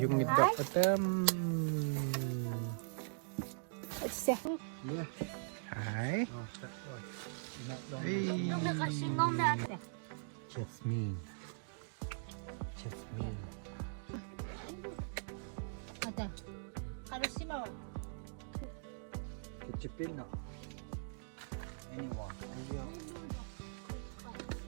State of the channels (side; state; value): left; silent; digital silence